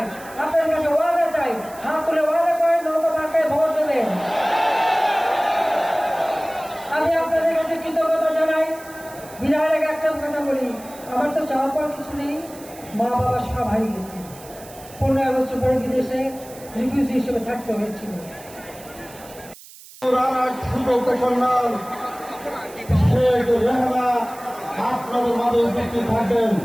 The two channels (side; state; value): right; noise; hiss, 19 dB below the sound